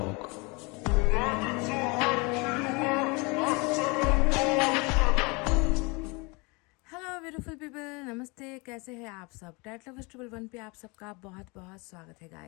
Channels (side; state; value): right; quieter; 27.9 dB